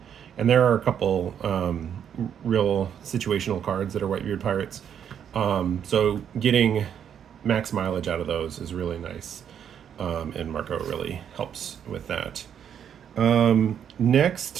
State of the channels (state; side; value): quieter; left; 8.7 dB